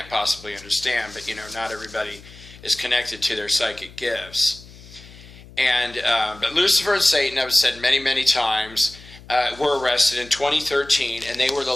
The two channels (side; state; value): left; noise; hum, 20 dB below the sound